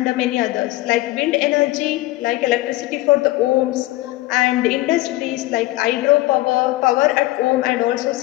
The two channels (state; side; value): quieter; right; 18.5 dB